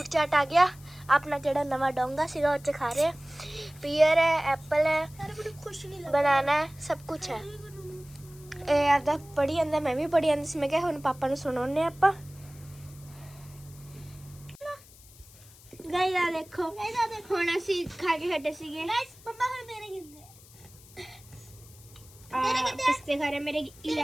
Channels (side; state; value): left; noise; hiss, 23 dB below the sound